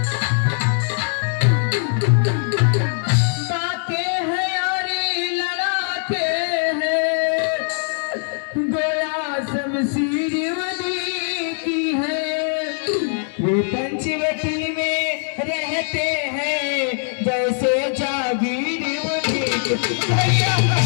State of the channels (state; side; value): silent; right; 65 dB below the other